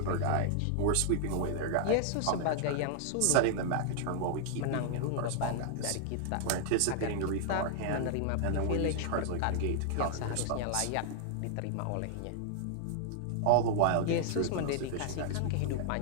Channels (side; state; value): both; different; correlation 0.00